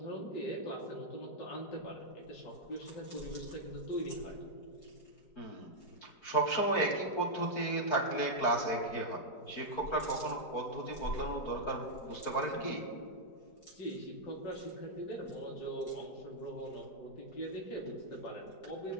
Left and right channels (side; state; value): right; late; 4.5 ms